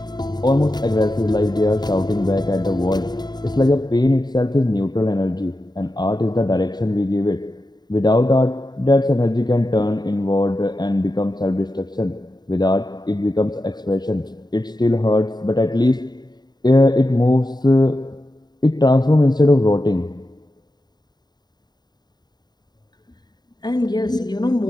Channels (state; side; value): late; right; 0.20 ms